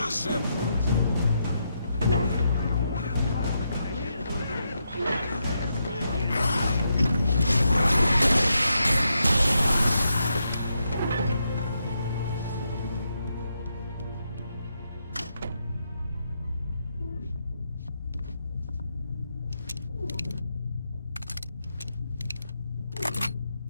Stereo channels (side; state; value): both; inverted; correlation -0.82